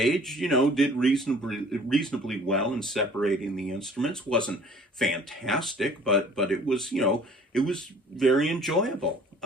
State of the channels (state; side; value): normal; both; correlation 0.51